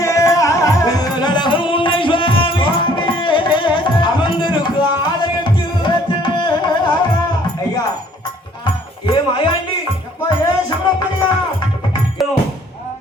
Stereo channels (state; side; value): normal; both; correlation 0.59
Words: நடகம் உன்னை சுவாமி அமர்ந்திருக்கு ஆலயத்தில். ஐயா ஏ மாயாண்டி ஏ சிவப்பிரியா,